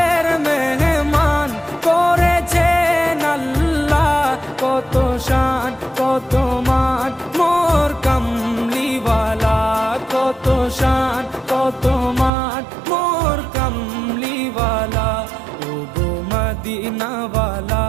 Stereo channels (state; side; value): drops out; left; at 12.3 s